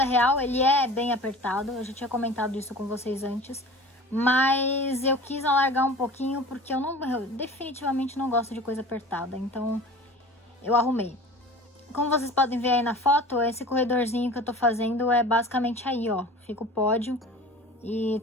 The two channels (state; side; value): normal; both; correlation 0.40